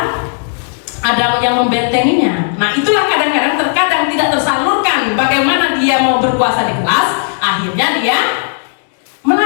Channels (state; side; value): silent; right; 71 dB below the other